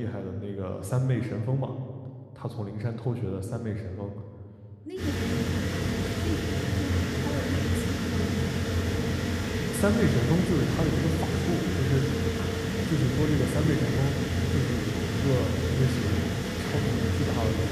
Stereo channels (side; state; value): both; identical; correlation 1.00